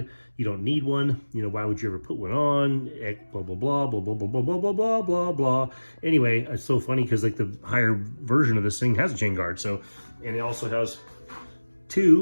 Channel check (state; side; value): inverted; both; correlation -1.00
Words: you don't need one. You know, why would you ever put one on? Blah, blah, blah, blah, blah, blah, blah, blah, blah, blah, blah, blah. Anyway, it's so funny because like the higher version of this thing has a chain guard. So, and it also has